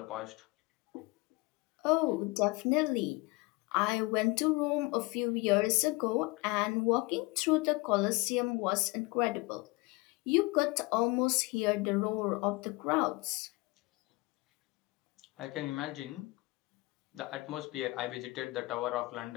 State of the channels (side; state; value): right; quieter; 24.1 dB